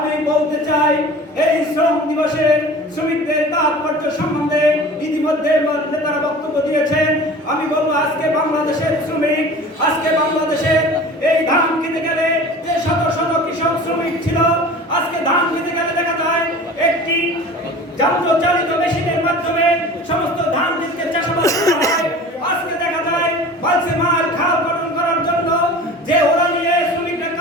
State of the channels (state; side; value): normal; both; correlation 0.40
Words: বলতে চাই এই শ্রম দিবসের শ্রমিকদের তাৎপর্য সম্বন্ধে ইতিমধ্যে নেতারা বক্তব্য দিয়েছেন। আমি বলবো আজকে বাংলাদেশের শ্রমিক, আজকে বাংলাদেশের এই ধান খেতে গেলে যে শত শত কৃষক শ্রমিক ছিল, আজকে ধান খেতে গেলে দেখা যায় একটি যন্ত্রচালিত মেশিনের মাধ্যমে সমস্ত ধান ক্ষেতকে চাষাবাদ করা হয়। আজকে দেখা যায় বালসে মাল খাল খনন করার জন্য যে ওরা নিয়ে শ্রমিকরা